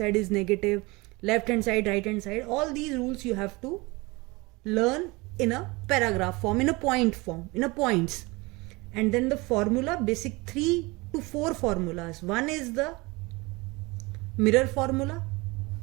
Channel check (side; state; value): left; quieter; 24.3 dB